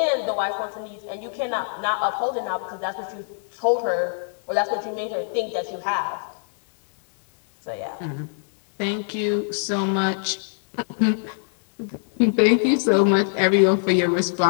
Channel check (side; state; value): right; silent; digital silence